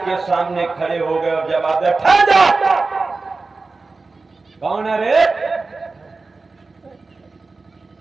सामने खड़े हो गए और जवाब दिया, ठहर जा! कौन है रे?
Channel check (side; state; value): left; quieter; 3.8 dB